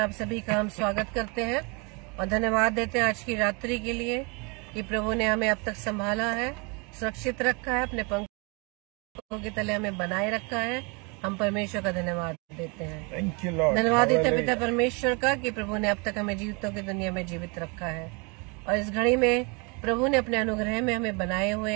सभी का हम स्वागत करते हैं और धन्यवाद देते हैं आज की रात्रि के लिए कि प्रभु ने हमें अब तक संभाला है, सुरक्षित रखा है, अपने पंखों के तले हमें बनाए रखा है। हम परमेश्वर का धन्यवाद देते हैं। Thank you Lord. धन्यवाद देते हैं पिता परमेश्वर का कि प्रभु ने अब तक हमें जीवितों की दुनिया में जीवित रखा है और इस घड़ी में प्रभु ने अपने अनुग्रह में हमें बनाए हुए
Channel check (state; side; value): quieter; left; 31.1 dB